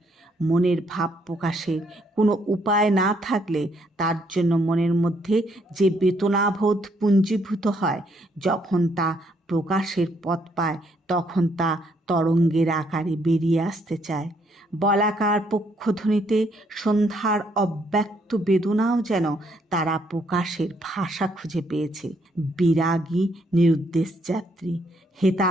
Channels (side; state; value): both; normal; correlation 0.71